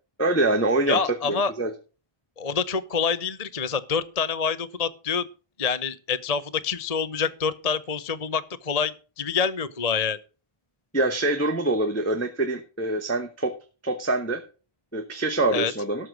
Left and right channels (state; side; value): late; right; 1.7 ms